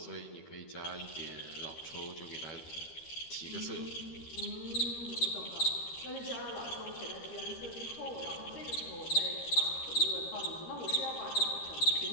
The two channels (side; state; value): right; late; 13 ms